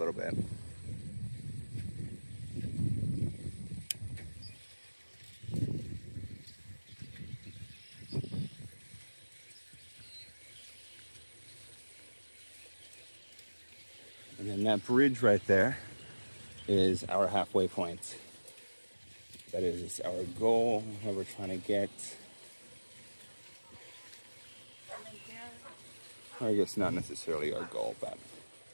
bit. And then that bridge right there is our halfway point. That is our goal, where we're trying to get. I guess not necessarily our goal, but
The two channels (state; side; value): inverted; both; correlation -1.00